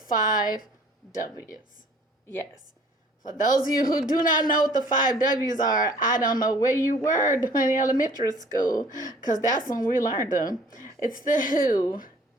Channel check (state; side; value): normal; both; correlation 0.54